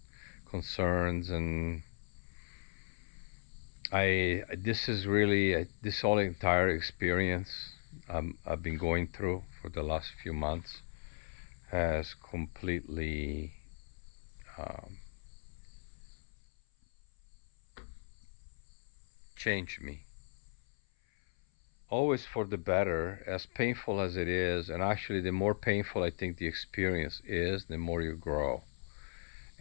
concerns. And I this is really this whole entire experience I've been going through for the last few months has completely um, changed me, always for the better, as painful as it is. And actually, the more painful I think the experience is, the more you grow.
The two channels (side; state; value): right; silent; 53 dB below the other